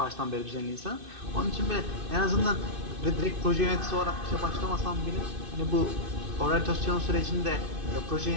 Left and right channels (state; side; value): late; left; 2.6 ms